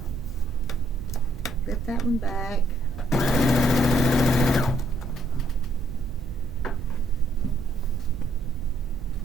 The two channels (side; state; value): right; noise; rumble, 12 dB below the sound